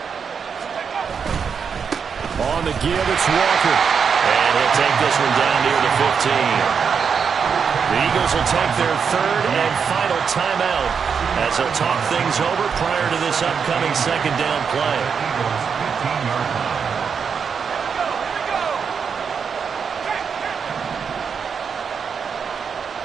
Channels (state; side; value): quieter; left; 6.4 dB